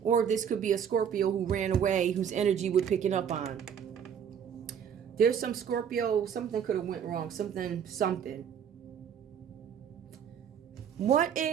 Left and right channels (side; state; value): left; quieter; 8.2 dB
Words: or this could be a Scorpio who ran away, whose energy we're picking up on. There's some Scorpio, something could have went wrong. Something. What